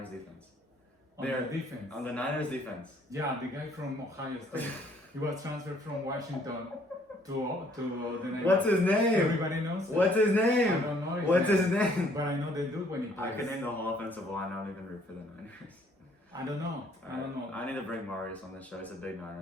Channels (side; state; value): both; normal; correlation 0.62